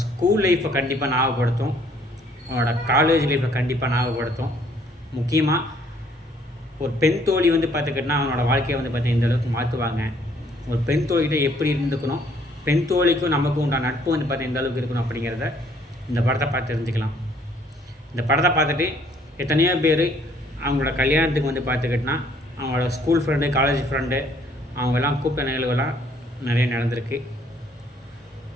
ஸ்கூல் லைஃப்பை கண்டிப்பாக ஞாபகப்படுத்தும், அவனோட காலேஜ் லைஃப்பை கண்டிப்பாக ஞாபகப்படுத்தும். முக்கியமாக ஒரு பெண் தோழி பார்த்துக்கிட்டனா அவனோட வாழ்க்கையை பார்த்தீங்கன்னா இந்த அளவுக்கு மாற்றுவாங்க. ஒரு பெண் தோழிகிட்ட எப்படி இருந்துக்கணும், பெண் தோழிக்கும் நமக்கும் உண்டான நட்பு பார்த்தீங்கன்னா இந்த அளவுக்கு இருக்கணும் அப்படிங்கிறத இந்த படத்தை பார்த்து தெரிஞ்சுக்கலாம். இந்த படத்தை பார்த்துட்டு எத்தனையோ பேர் அவங்களோட கல்யாணத்துக்கு பார்த்துக்கிட்டனா அவங்களோட ஸ்கூல் ஃப்ரெண்டு, காலேஜ் ஃப்ரெண்டு அவங்கெல்லாம் கூப்பிட்ட நிகழ்வுகள்லாம் நிறைய நடந்திருக்கு.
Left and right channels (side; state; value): both; normal; correlation 0.63